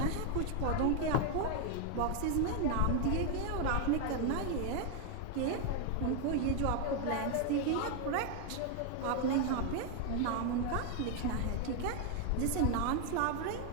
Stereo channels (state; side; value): different; both; correlation 0.00